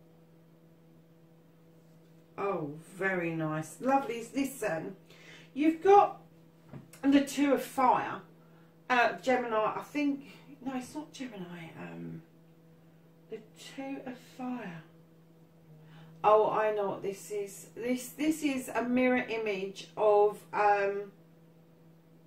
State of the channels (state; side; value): identical; both; correlation 1.00